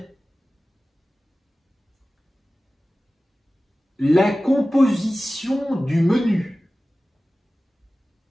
La composition du menu.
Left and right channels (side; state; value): both; normal; correlation 0.96